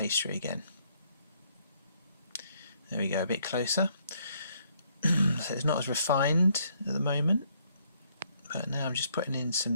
again. There we go, a bit closer. So it's not as refined at the moment, but now I'm just putting in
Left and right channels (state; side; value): inverted; both; correlation -0.69